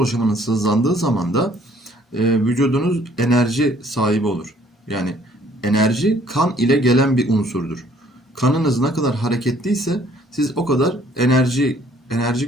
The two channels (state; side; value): normal; both; correlation 0.60